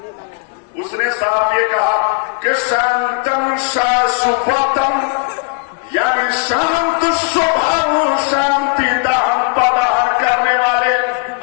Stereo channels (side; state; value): right; quieter; 32.8 dB